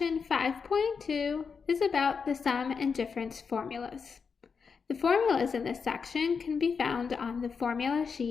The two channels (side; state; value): right; quieter; 5.7 dB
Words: 5.2 is about the sum and difference formulas. The formulas in this section can be found on the formula